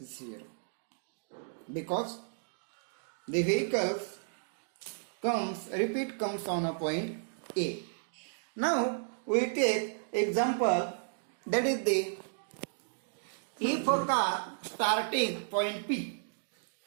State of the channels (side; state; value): left; silent; digital silence